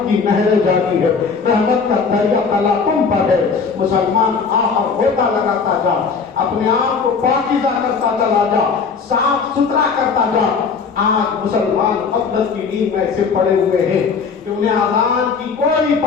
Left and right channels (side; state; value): right; quieter; 5.4 dB